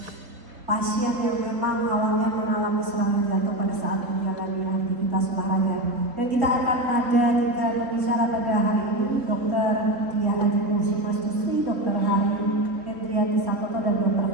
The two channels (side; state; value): left; late; 3.7 ms